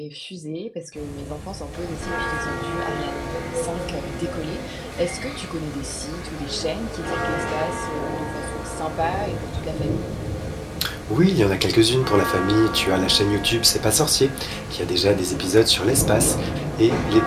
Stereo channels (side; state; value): both; identical; correlation 1.00